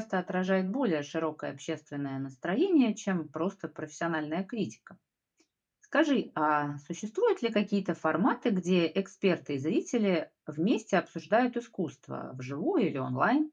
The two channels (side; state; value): both; identical; correlation 1.00